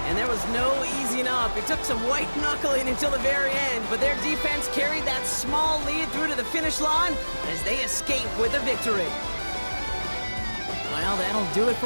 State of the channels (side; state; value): both; inverted; correlation -1.00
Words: And there was no easing up. It took some white knuckling until the very end, but their defense carried that small lead through to the finish line as they escape with a victory. Well, that'll do it